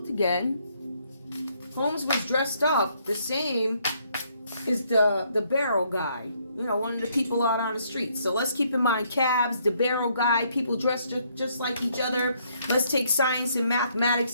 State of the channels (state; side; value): inverted; both; correlation -0.70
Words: again. Holmes was dressed up the same as the barrel guy. You know, one of the people out on the street. So let's keep in mind cabs, the barrel guy, people dressed just like each other. Let's take science and